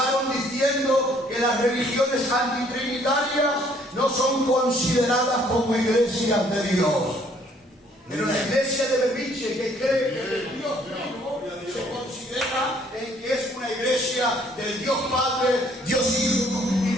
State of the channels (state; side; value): normal; both; correlation 0.62